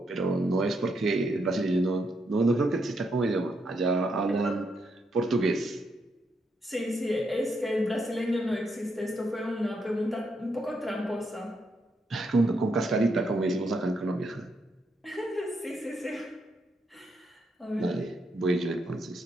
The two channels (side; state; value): both; normal; correlation 0.79